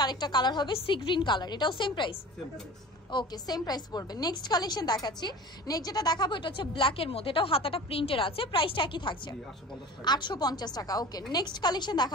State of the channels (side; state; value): both; normal; correlation 0.39